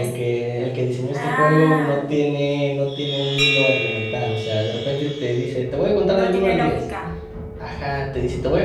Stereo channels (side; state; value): both; identical; correlation 1.00